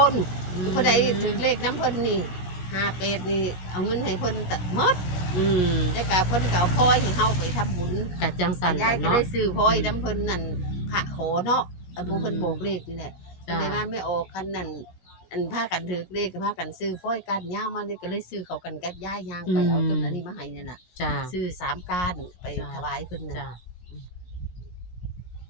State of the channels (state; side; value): late; right; 16 ms